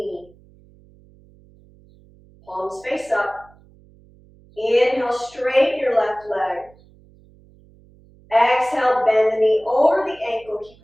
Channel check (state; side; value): noise; right; hum, 28 dB below the sound